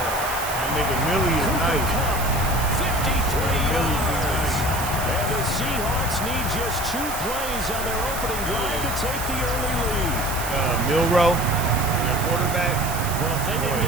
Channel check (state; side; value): noise; right; hiss, 8 dB below the sound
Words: That nigga Millie is Cooper nice. Kupp, 53 yards. And the Seahawks need just 2 plays on their opening drive to take the early lead. Milrow, their quarterback. Well, if they didn't